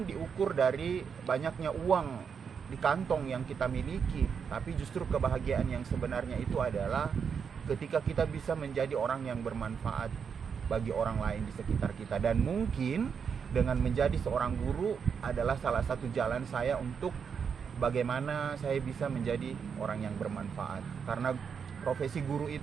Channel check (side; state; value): left; quieter; 6.6 dB